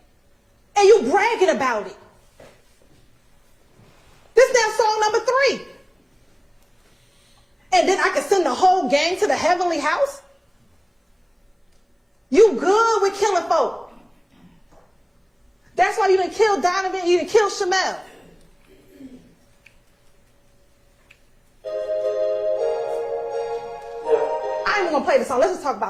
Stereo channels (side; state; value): both; identical; correlation 1.00